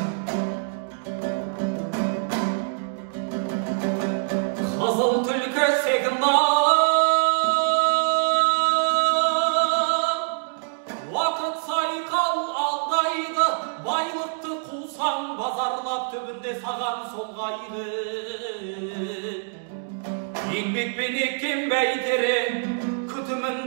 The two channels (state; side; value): silent; left; digital silence